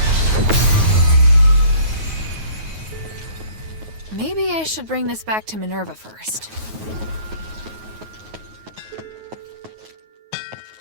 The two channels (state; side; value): late; left; 9.4 ms